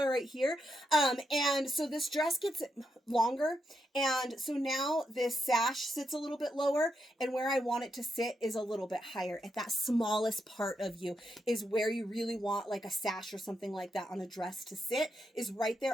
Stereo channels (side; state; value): both; normal; correlation 0.82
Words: right here. And so this dress gets longer, and so now this sash sits a little bit lower, and where I want it to sit is a little bit higher. At that smallest part of you is where you really want like a sash or something like that on a dress to sit, is right